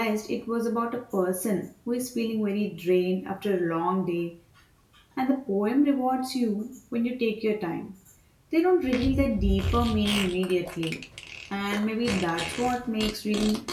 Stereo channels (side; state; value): both; identical; correlation 1.00